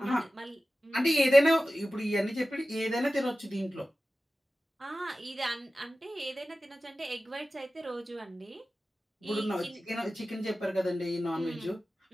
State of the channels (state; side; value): normal; both; correlation 0.95